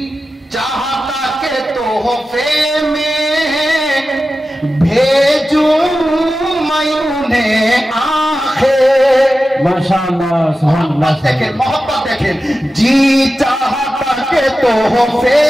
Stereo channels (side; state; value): both; normal; correlation 0.93